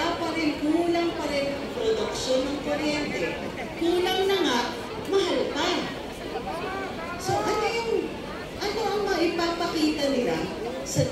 pa rin, kulang pa rin ang produksyon ng kuryente. Kulang na nga, mahal pa. So ano ang maipapakita nila sa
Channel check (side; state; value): both; identical; correlation 1.00